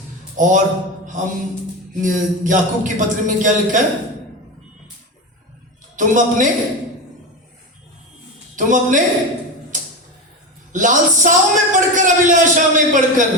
और हम, याकूब की पत्री में क्या लिखा है? तुम अपने लालसाओं में पढ़कर, अभिलाषा में पढ़कर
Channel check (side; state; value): both; normal; correlation 0.20